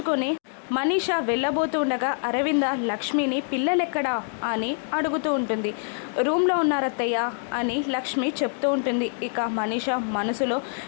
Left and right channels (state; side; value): silent; right; digital silence